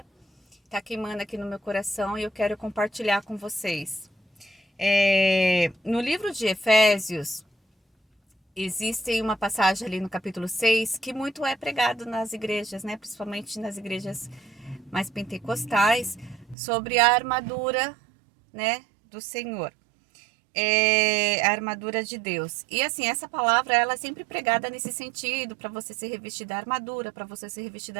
tá queimando aqui no meu coração e eu quero compartilhar com vocês. No livro de Efésios, existe uma passagem ali no capítulo 6 que muito é pregado nas igrejas, né? Principalmente nas igrejas mais pentecostais, sobre a armadura, né, do Senhor. A armadura de Deus. E assim, essa palavra ela é sempre pregada nesse sentido, para você se revestir da armadura, para você se revestir da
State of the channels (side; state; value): left; drops out; at 16.6 s